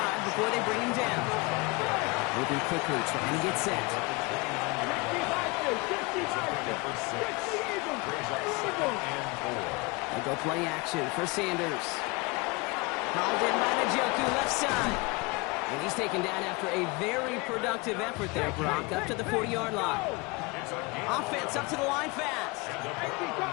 before they bring him down. Moving quickly, trying to get set. They go play action for Sanders. Called in by Njoku, left side. And he's taken down after a very productive effort there, Brock, up to the 40-yard line. Offense up to the line fast.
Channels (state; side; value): quieter; right; 26.0 dB